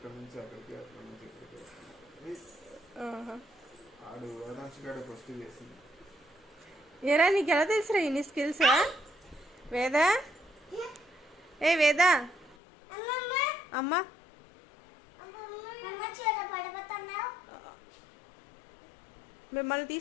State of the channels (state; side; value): drops out; right; at 12.6 s